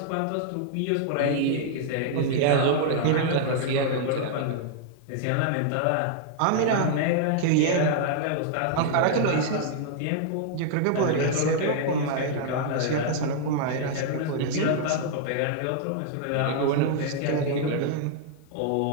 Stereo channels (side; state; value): both; different; correlation -0.01